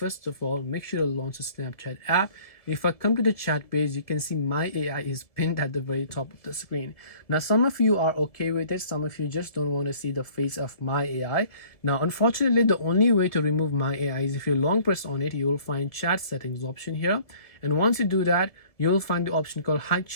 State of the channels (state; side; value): late; right; 1.6 ms